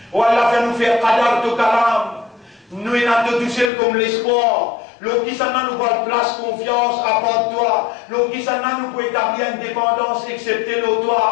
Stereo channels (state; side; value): drops out; right; at 3.7 s